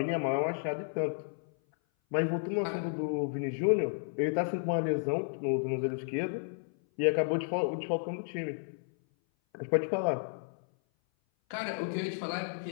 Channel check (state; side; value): silent; right; 56 dB below the other